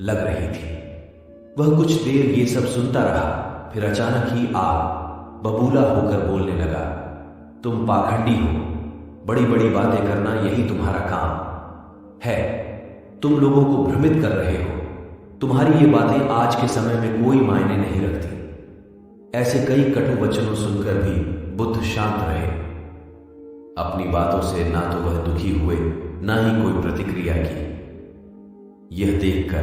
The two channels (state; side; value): identical; both; correlation 1.00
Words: लग रही थी। वह कुछ देर ये सब सुनता रहा, फिर अचानक ही बबूला होकर बोलने लगा, तुम पाखंडी हो, बड़ी बड़ी बातें करना यही तुम्हारा काम है। तुम लोगों को भ्रमित कर रहे हो। तुम्हारी ये बातें आज के समय में कोई मायने नहीं रखती। ऐसे कई कटु वचनों सुनकर भी बुद्ध शांत रहे। अपनी बातों से ना तो वह दुखी हुए, ना ही कोई प्रतिक्रिया की। यह